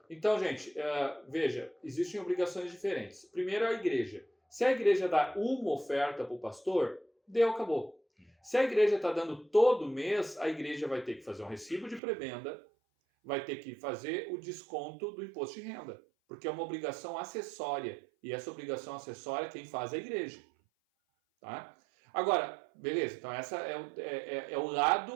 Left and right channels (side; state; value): left; drops out; at 12.0 s